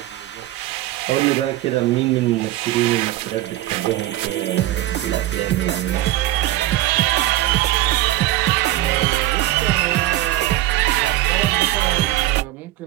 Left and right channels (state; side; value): quieter; left; 15.2 dB